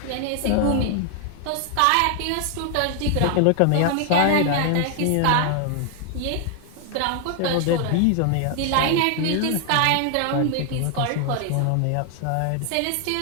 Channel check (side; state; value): both; different; correlation 0.00